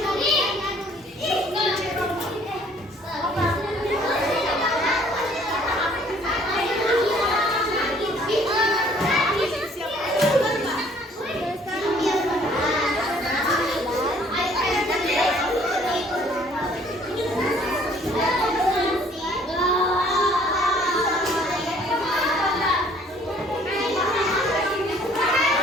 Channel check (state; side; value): normal; both; correlation 0.58